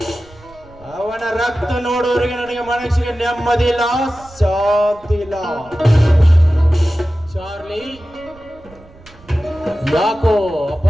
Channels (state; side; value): noise; right; rumble, 24 dB below the sound